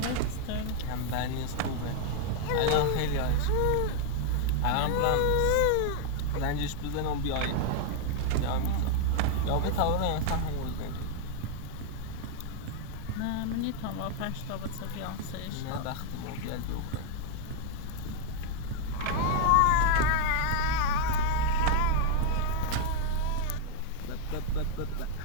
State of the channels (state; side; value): different; both; correlation 0.00